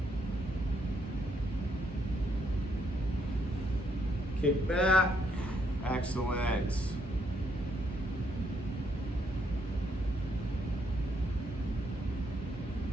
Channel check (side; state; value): both; normal; correlation 0.73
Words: Kick back, excellent.